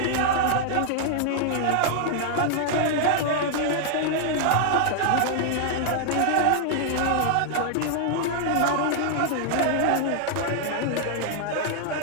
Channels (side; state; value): both; different; correlation 0.00